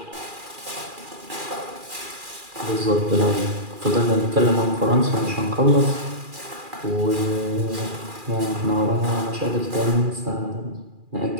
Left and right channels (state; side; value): late; left; 2.4 ms